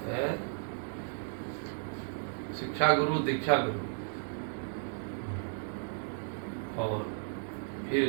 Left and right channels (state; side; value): silent; left; 55 dB below the other